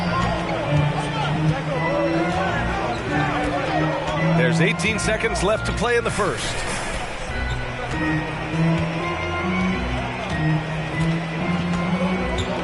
There's 18 seconds left to play in the first.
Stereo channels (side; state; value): both; identical; correlation 1.00